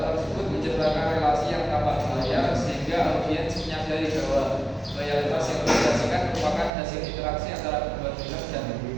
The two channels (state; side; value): drops out; left; at 6.7 s